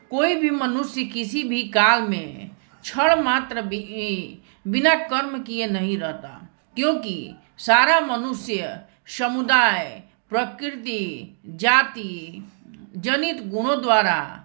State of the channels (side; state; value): left; silent; digital silence